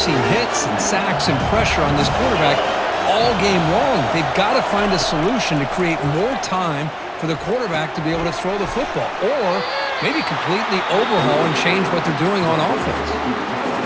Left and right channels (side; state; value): both; identical; correlation 1.00